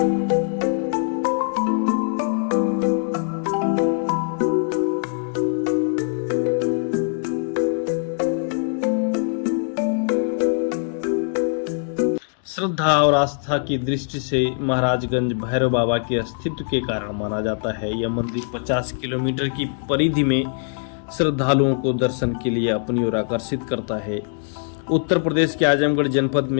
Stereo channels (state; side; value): silent; right; digital silence